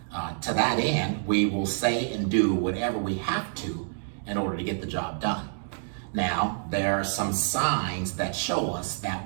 To that end, we will say and do whatever we have to in order to get the job done. Now, there are some signs that show us that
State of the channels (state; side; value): silent; left; digital silence